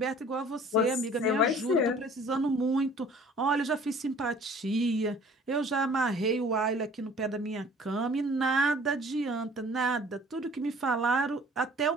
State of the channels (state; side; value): normal; both; correlation 0.51